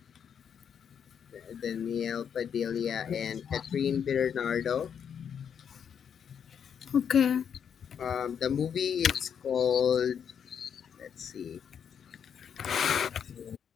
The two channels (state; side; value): quieter; right; 7.8 dB